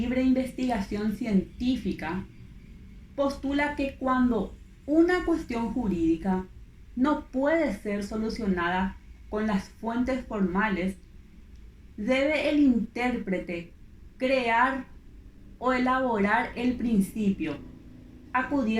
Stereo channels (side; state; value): both; identical; correlation 1.00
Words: investigación científica postula que cuando una cuestión jurídica no puede ser solucionada con las fuentes formales, debe el intérprete crear o elaborar el principio,